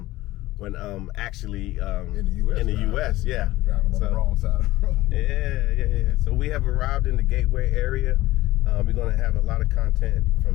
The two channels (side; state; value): right; quieter; 17.4 dB